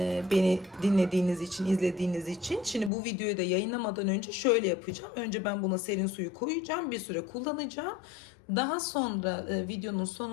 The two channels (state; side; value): drops out; right; at 2.9 s